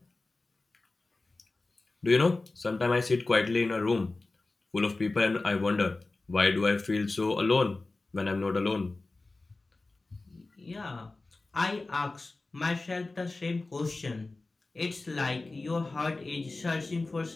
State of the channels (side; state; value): right; quieter; 3.3 dB